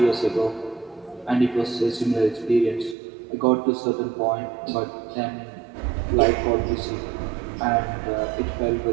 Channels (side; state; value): left; drops out; at 3.0 s